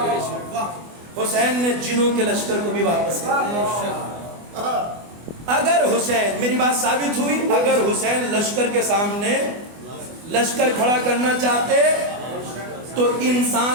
حسین نے جنوں کے لشکر کو بھی واپس کر دیا. اگر حسین، میری بات ثابت ہوئی، اگر حسین لشکر کے سامنے لشکر کھڑا کرنا چاہتے تو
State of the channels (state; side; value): late; left; 24 ms